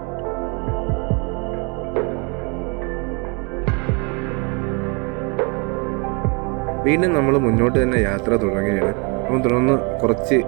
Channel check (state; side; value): quieter; left; 32.7 dB